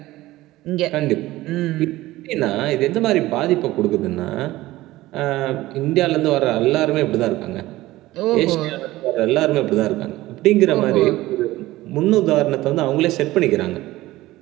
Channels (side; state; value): left; quieter; 17.3 dB